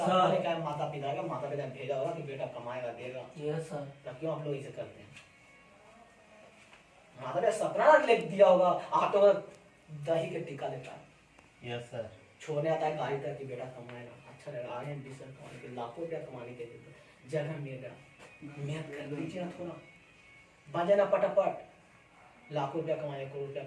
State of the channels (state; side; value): identical; both; correlation 1.00